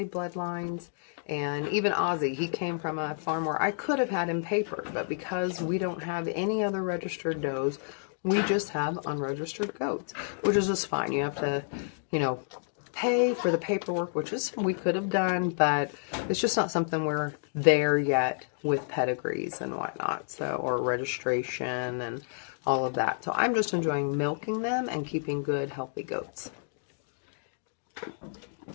bloodlines, and even Ozzy, he came from a farm where I could have had him papered, but because we don't have any other registered does, we just have unregistered goats, which is just fine. You have to, pay for the paperwork, which is we could have done, but it's just not something we're there yet with pedigrees and whatnot, so, or registration and all of that. So I'm just enjoying milking them and keeping good, healthy goats.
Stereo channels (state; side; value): silent; right; digital silence